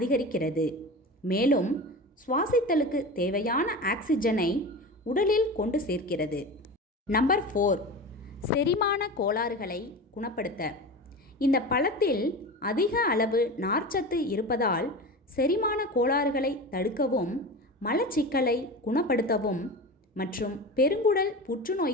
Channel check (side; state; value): both; normal; correlation 0.29